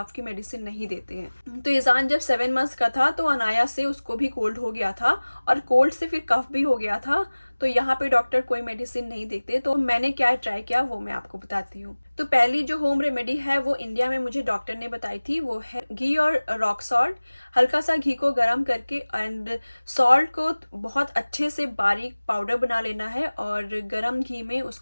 की मेडिसिन नहीं देते हैं। तो ईजान जब 7 मंथ्स का था तो अनाया से उसको भी कोल्ड हो गया था और कोल्ड से फिर कफ भी हो गया था। तो यहाँ पे डॉक्टर कोई मेडिसिन नहीं देते। तो मैंने क्या ट्राई किया वो मैं आपको बताती हूँ। तो पहली जो होम रेमेडी है वो इंडिया में मुझे डॉक्टर ने बताई थी, वो है घी और रॉक सॉल्ट। हल्का सा घी को गर्म करके एंड सॉल्ट को बहुत अच्छे से बारीक पाउडर बना लेना है और गर्म घी में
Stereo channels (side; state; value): both; inverted; correlation -1.00